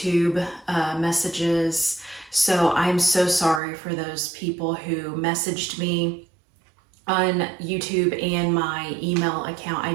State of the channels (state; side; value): drops out; left; at 3.6 s